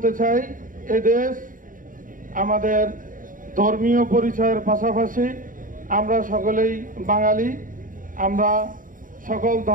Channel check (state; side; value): late; left; 0.39 ms